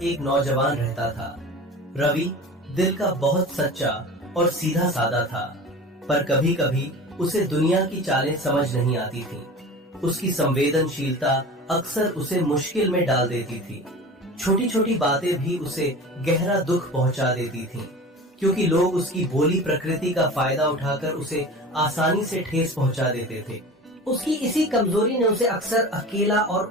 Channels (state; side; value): normal; both; correlation 0.35